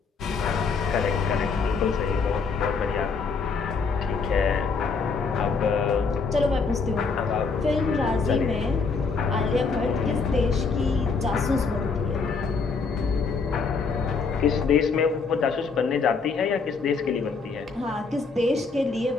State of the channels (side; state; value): right; quieter; 4.8 dB